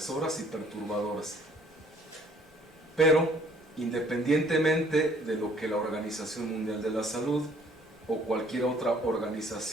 y perturbadoras. Pero, independientemente de lo que la Organización Mundial de la Salud o cualquier otra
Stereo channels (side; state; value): both; normal; correlation 0.59